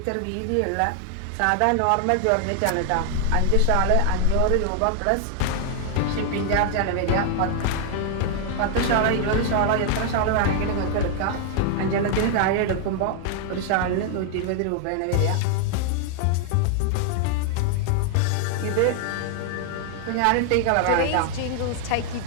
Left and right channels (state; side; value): different; both; correlation 0.00